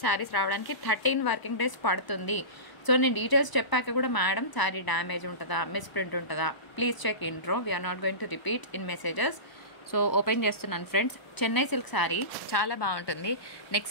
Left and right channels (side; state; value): right; late; 1.0 ms